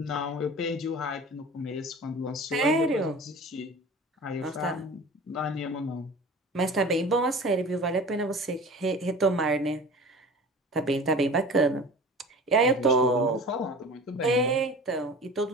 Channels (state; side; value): normal; both; correlation 0.39